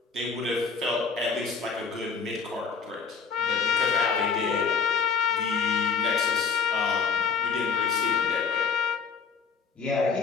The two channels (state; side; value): quieter; right; 5.6 dB